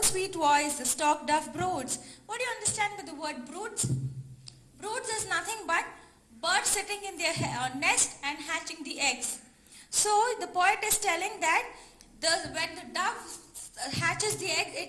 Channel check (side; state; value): both; identical; correlation 1.00